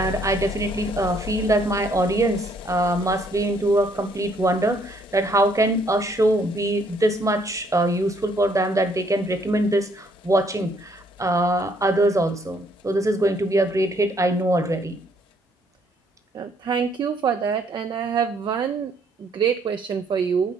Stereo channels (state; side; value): normal; both; correlation 0.67